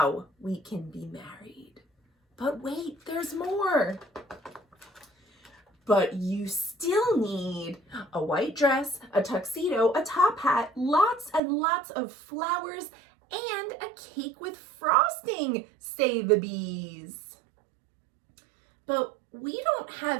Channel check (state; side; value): drops out; left; at 11.4 s